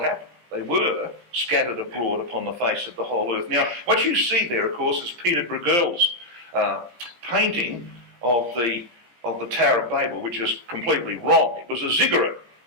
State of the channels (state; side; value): late; left; 17 ms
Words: They were scattered abroad upon the face of the whole earth. Now, what you see there, of course, is Peter Bruegel's painting of the Tower of Babel, which is completely wrong. It was a ziggurat,